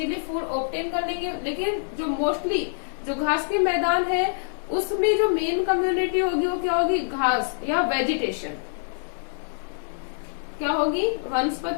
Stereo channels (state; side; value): silent; right; digital silence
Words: फूड ऑब्टेन कर लेंगे। लेकिन जो मोस्टली जो घास के मैदान है उसमें जो मेन कम्युनिटी होगी वो क्या होगी? घास या वेजिटेशन। क्या होगी?